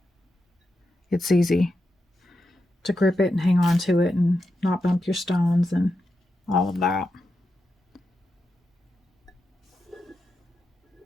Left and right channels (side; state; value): both; normal; correlation 0.87